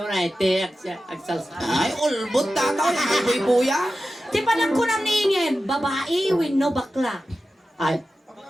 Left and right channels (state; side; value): normal; both; correlation 0.93